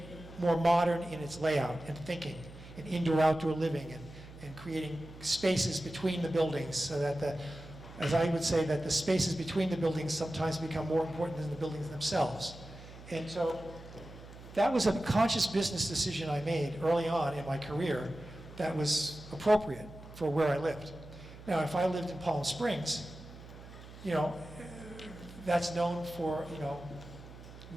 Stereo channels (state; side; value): noise; right; hum, 16 dB below the sound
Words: more modern in its layout and thinking, and indoor-outdoor living, and creating spaces between the buildings, so that as I would say, that the spaces between the buildings sometimes become more important than the buildings themselves. And so that was a conscious business decision I made early on in my career that was appropriate for where I lived. Now, if I lived in Palm Springs, that's known for,